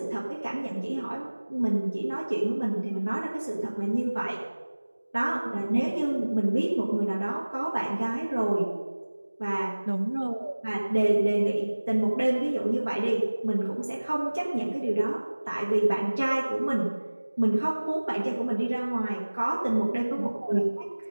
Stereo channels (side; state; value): both; inverted; correlation -1.00